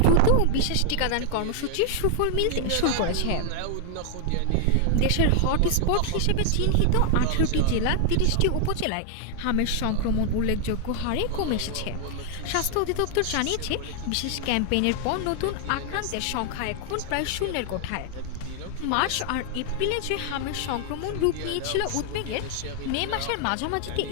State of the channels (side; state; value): both; different; correlation 0.00